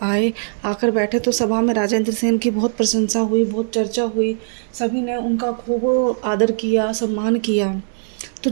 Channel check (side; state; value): left; silent; digital silence